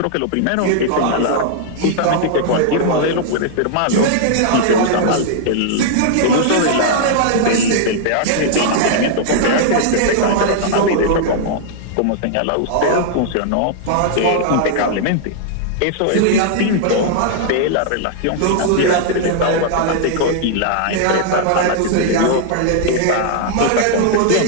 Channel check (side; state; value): both; different; correlation -0.01